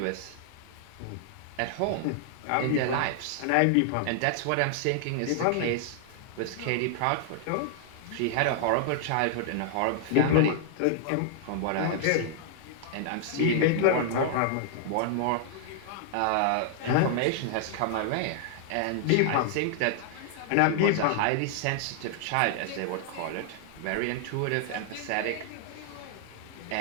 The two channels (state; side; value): different; both; correlation -0.01